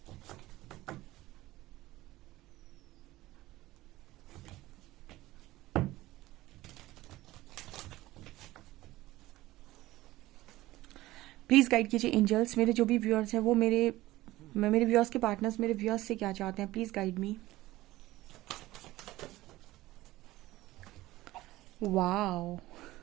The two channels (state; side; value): quieter; left; 17.4 dB